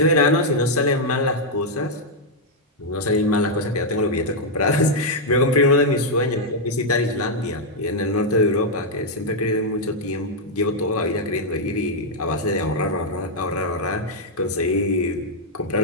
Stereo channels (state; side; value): normal; both; correlation -0.03